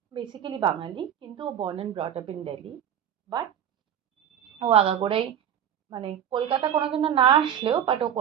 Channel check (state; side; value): quieter; left; 9.5 dB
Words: বেসিক্যালি বাঙালি, কিন্তু ও born and brought up in Delhi. But ও আগাগোড়াই কলকাতা কোনোদিনও না আসলেও ও